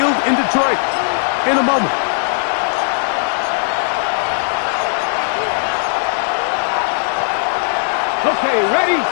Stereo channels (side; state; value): right; silent; 68 dB below the other